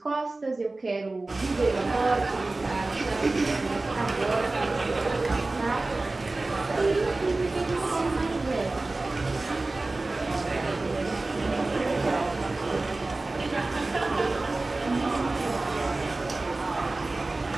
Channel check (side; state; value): left; quieter; 3.2 dB